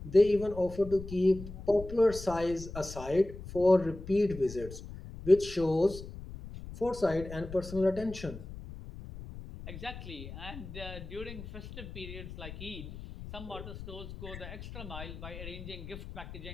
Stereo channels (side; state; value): left; noise; rumble, 12 dB below the sound